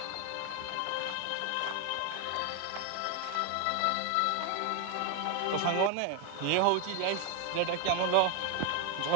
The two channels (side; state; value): both; different; correlation 0.01